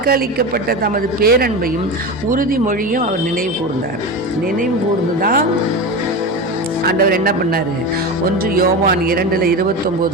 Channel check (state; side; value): normal; both; correlation 0.24